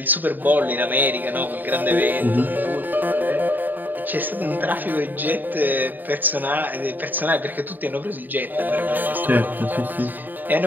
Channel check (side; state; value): left; late; 0.088 ms